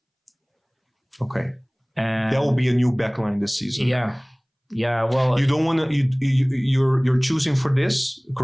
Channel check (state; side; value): identical; both; correlation 1.00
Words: Okay. That will be a new backline this season. Yeah, well, you don't want to. You're choosing for this.